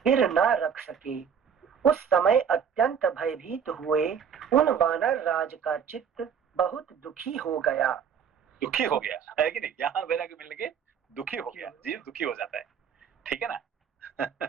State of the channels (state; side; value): quieter; left; 7.4 dB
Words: न रख सके। उस समय अत्यंत भयभीत हुए उन वानर राज का चित्त बहुत दुखी हो गया। दुखी हो गया, है कि नहीं? ज्ञान वैराग्य मिलने के दुखी हो गया, जीव दुखी हो जाता है, ठीक है ना?